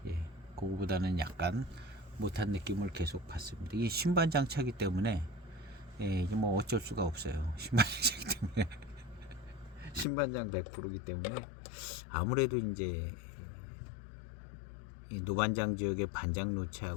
그거보다는 약간 못한 느낌을 계속 받습니다. 이게 신반장차기 때문에 뭐 어쩔 수가 없어요. 신반장차기 때문에 신반장 100%이기 때문에 아무래도 이제 이 노반장 지역의 반장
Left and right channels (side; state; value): right; drops out; at 10.1 s